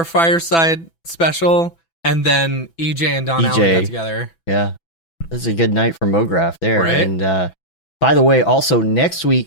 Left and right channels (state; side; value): late; right; 6.0 ms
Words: Fireside special, and then EJ and Don Allen got together. Yeah, this is a good night for Mograph there. Right? And by the way, also next week